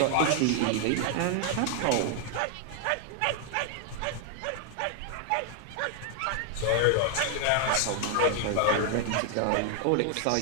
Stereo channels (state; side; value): different; both; correlation 0.00